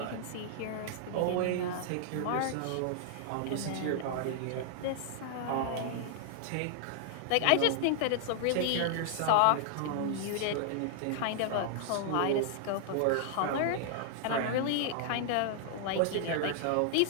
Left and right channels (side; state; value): both; different; correlation -0.01